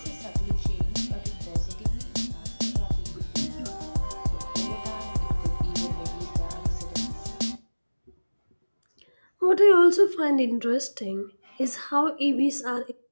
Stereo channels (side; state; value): both; inverted; correlation -1.00